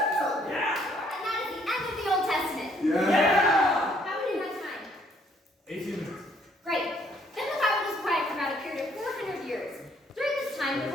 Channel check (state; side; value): normal; both; correlation 0.66